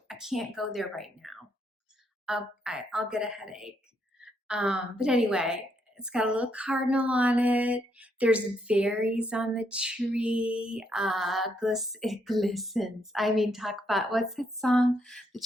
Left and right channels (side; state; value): both; normal; correlation 0.75